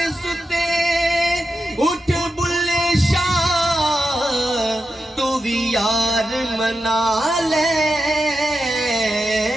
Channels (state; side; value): normal; both; correlation 0.89